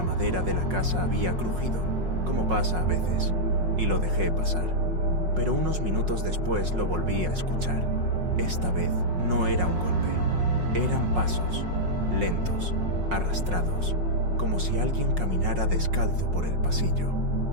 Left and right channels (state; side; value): late; left; 5.5 ms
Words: madera de la casa había crujido, como pasa a veces, y lo dejé pasar. Pero unos minutos después lo volví a escuchar. Esta vez no era un golpe, eran pasos, lentos, arrastrados, como si alguien caminara descalzo por el pasillo.